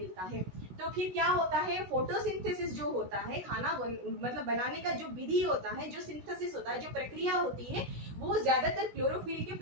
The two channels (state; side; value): late; left; 16 ms